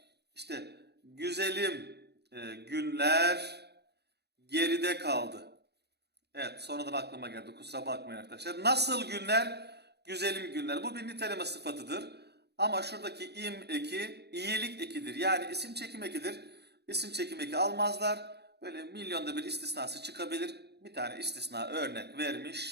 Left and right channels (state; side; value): late; left; 0.48 ms